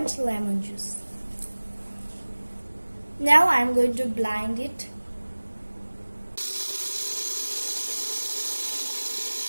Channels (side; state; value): both; inverted; correlation -1.00